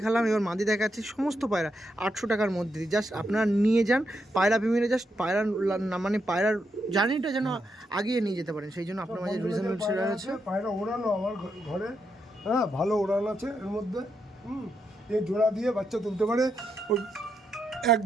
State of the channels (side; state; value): both; normal; correlation 0.82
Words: এবার মাদি দেখাচ্ছি, সমস্ত পায়রা 800 টাকার মধ্যে। জাস্ট আপনারা নিয়ে যান পায়রা প্রেমীরা, জাস্ট পায়রা মানে পায়রার জার্নিটা যেন আগিয়ে নিয়ে যেতে পারেন, সেই জন্য আপনার মাঝে রিজনেবল সেরা আছে। পায়রা ওড়ানো আমার ঘরে, হ্যাঁ ভালো ওড়ান আছে এর মধ্যে। এই জোড়া দিয়ে বাচ্চা তুলতে পারে, ওই